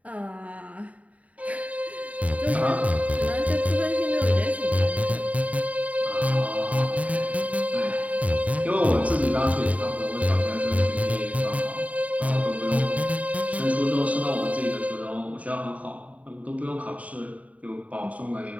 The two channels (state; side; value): late; left; 0.069 ms